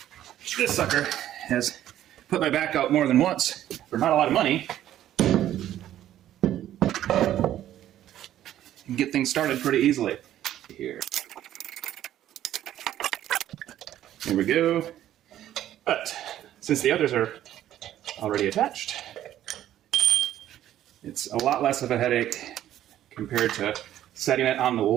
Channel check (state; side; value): quieter; left; 12.2 dB